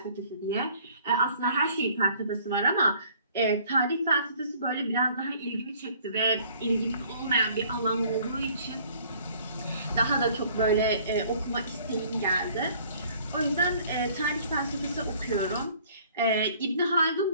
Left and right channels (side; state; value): both; inverted; correlation -0.56